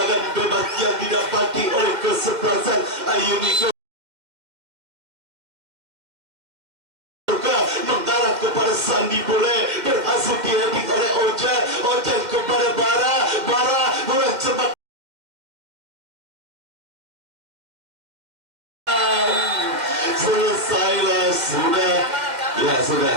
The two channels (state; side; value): late; left; 2.0 ms